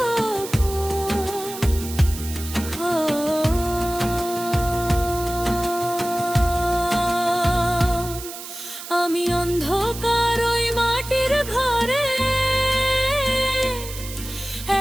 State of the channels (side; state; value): right; noise; hiss, 11 dB below the sound